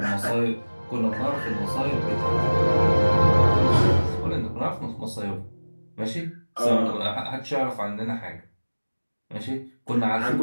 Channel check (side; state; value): both; inverted; correlation -1.00